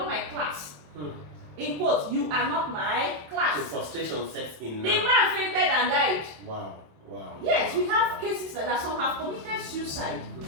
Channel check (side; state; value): left; late; 27 ms